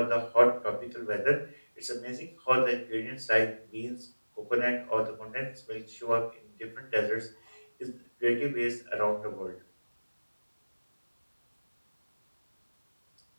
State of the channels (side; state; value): both; inverted; correlation -1.00